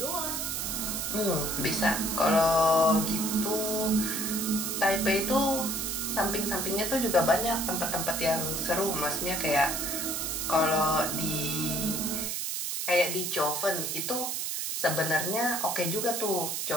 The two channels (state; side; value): noise; right; hiss, 2 dB below the sound